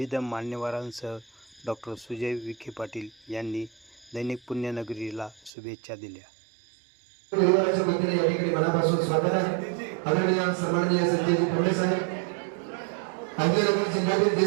मान्यवरांसह डॉक्टर सुजय विखे पाटील यांनी दैनिक पुण्यनगरीला शुभेच्छा दिल्या। परिवाराच्या वतीने या ठिकाणी मनापासून स्वागत आहे। आदरणीय सन्माननीय संजयजी फडणवीस साहेब, अहिल्यानगर जिल्ह्यातील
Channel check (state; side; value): drops out; left; at 5.5 s